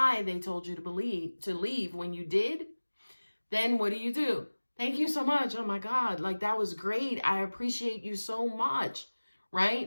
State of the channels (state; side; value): inverted; both; correlation -1.00